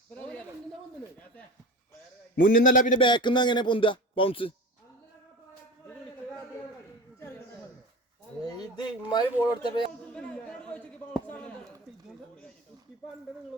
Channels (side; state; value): both; normal; correlation 0.32